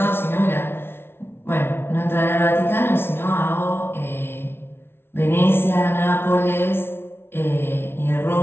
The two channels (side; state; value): right; late; 0.11 ms